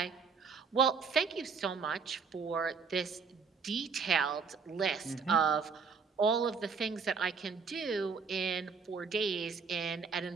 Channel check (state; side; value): quieter; left; 5.4 dB